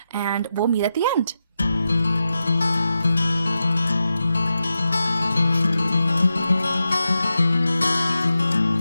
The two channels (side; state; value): both; inverted; correlation -0.90